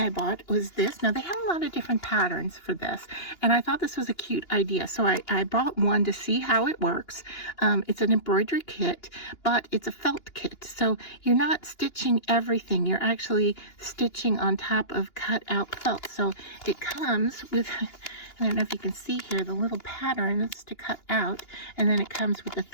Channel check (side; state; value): right; late; 2.9 ms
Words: I bought was this. Now, they have a lot of different patterns for this, and I thought this was a cute idea. So I bought one to see how it works. It's an embroidery kit, but it's a felt kit. So you're not stitching everything. You're actually stitching on top of cut out felt. So it comes with, I don't know if you can see here, the little patterns to cut out, and then it comes with the